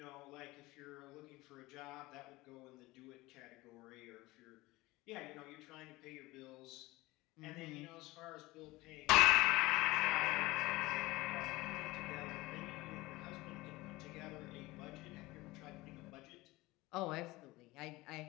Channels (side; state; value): right; quieter; 20.2 dB